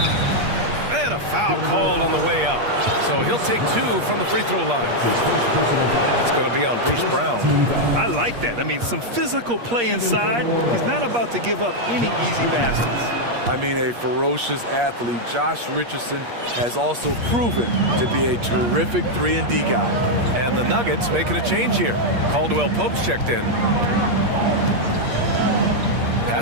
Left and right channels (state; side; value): late; left; 8.5 ms